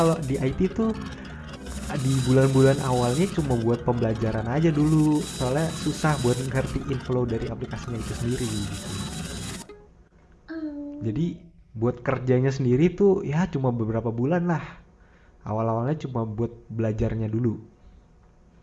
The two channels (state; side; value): identical; both; correlation 1.00